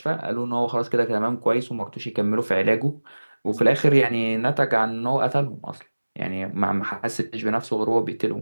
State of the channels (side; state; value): both; inverted; correlation -1.00